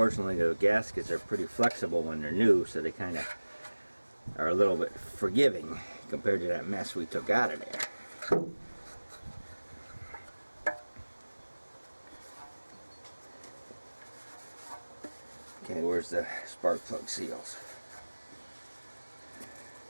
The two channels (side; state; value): both; inverted; correlation -1.00